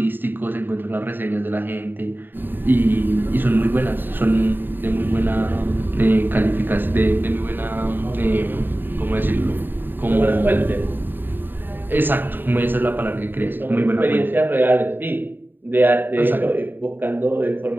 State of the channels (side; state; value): left; late; 0.094 ms